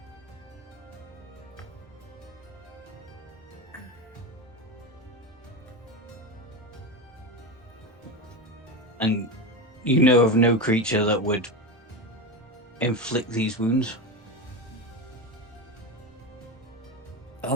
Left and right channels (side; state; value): both; normal; correlation 0.19